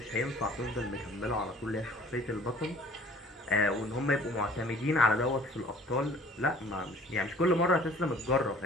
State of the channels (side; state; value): both; normal; correlation 0.52